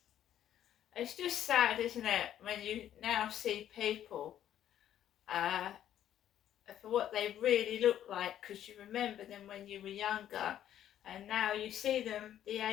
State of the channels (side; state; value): right; quieter; 11.1 dB